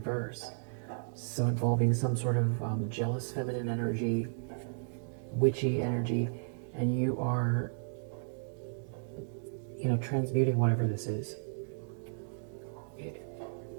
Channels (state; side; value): silent; left; digital silence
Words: So involving some sort of jealous feminine energy, witchy energy, and you are, you know, transmuting whatever this is.